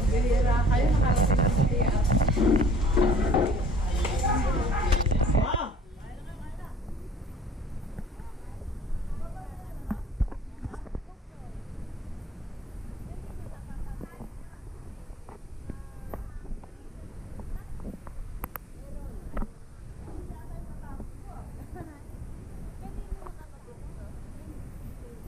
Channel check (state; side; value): normal; both; correlation 0.55